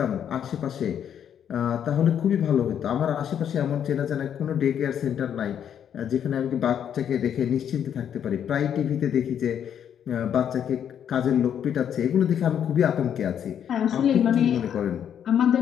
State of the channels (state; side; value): quieter; right; 9.0 dB